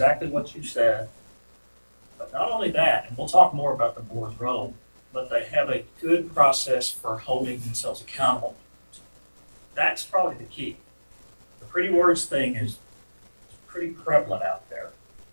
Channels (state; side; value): inverted; both; correlation -1.00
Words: what you said, but not only that, and we'll talk more about the board's role, but they have a good process for holding themselves accountable. That's probably the key. The pretty words thing is pretty prevalent out there,